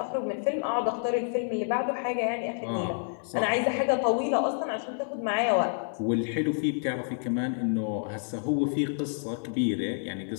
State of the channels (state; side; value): silent; right; digital silence